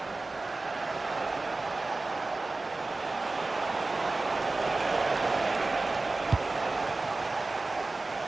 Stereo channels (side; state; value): left; quieter; 3.3 dB